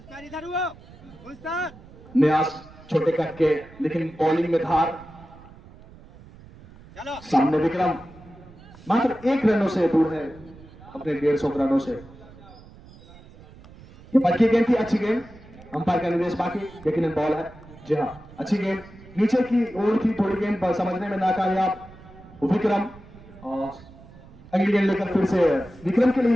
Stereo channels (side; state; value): right; noise; rumble, 21 dB below the sound